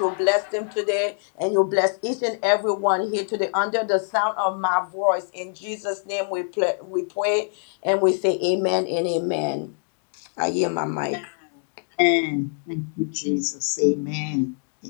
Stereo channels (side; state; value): right; silent; 62 dB below the other